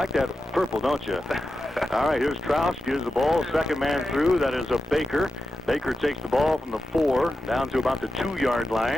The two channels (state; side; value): normal; both; correlation 0.90